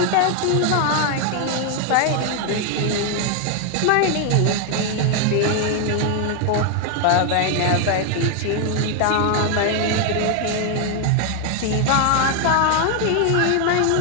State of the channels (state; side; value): different; both; correlation 0.01